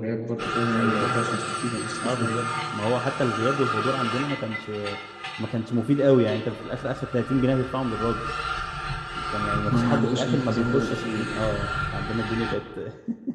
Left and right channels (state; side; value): identical; both; correlation 1.00